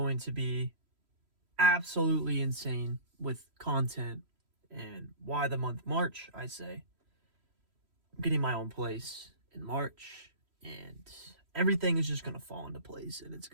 to be absolutely insane with content. And why the month March, I say. I'm getting my own place in March, and everything is just going to fall into place, and it's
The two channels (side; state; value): left; late; 3.1 ms